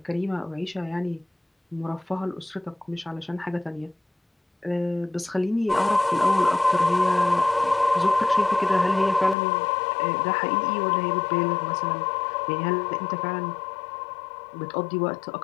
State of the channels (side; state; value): right; drops out; at 9.3 s